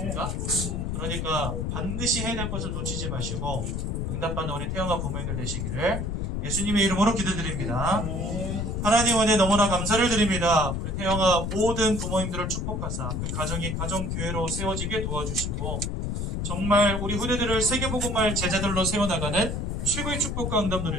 그러니까 반드시 해야 될 것을 놓치지 마시고 응답받는 우리 태영아 부모님들 되시기를 예수님의 이름으로 기도드립니다. 하나님 은혜 너무나 감사를 드립니다. 우리 태영아 모든 부모님들을 축복하사 그 가정이 가정교회로 세워지게 도와주시고 정말 우리 후대들을 세계복음할 제자들로 세워나가는 최고의 축복과 응답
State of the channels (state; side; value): noise; left; rumble, 2 dB below the sound